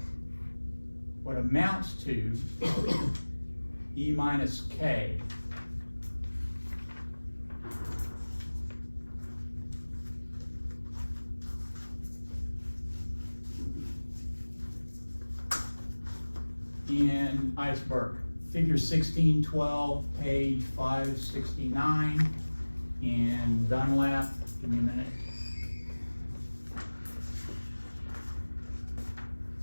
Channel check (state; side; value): inverted; both; correlation -1.00